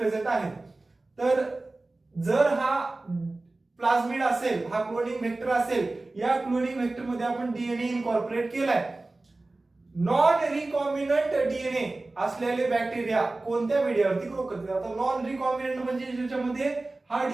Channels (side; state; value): left; quieter; 3.1 dB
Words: आहेत. तर जर हा प्लाझमिड असेल, हा क्लोनिंग वेक्टर असेल, या क्लोनिंग वेक्टर मध्ये आपण डीएनए इनकॉर्पोरेट केलाय. नॉन रिकॉम्बिनंट डीएनए असलेले बॅक्टेरिया कोणत्या मीडियावरती ग्रो करतात. आता नॉन रिकॉम्बिनंट म्हणजे ज्याच्यामध्ये हा